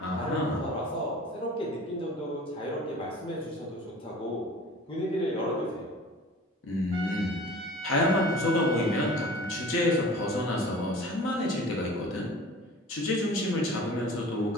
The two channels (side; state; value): both; normal; correlation 0.42